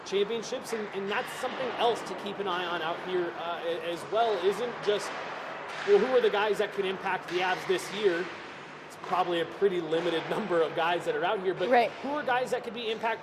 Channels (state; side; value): identical; both; correlation 1.00